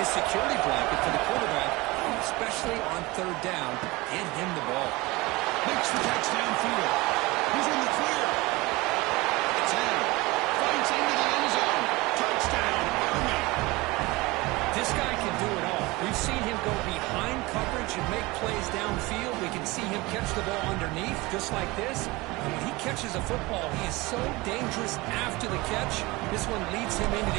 security blanket for the quarterback, especially on 3rd down. Get him the ball. Makes the touchdown field. He's in the clear. 10. Fights into the end zone. Touchdown, Army. This guy the ball underneath, just like this. And when he catches a football, he is so dangerous after the catch. This one leads him into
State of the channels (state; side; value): quieter; left; 22.3 dB